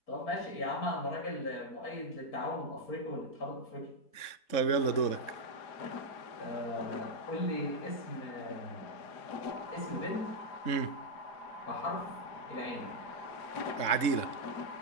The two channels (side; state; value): right; late; 3.7 ms